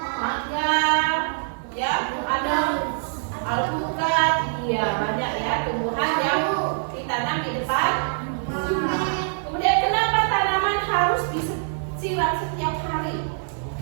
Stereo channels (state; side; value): silent; left; digital silence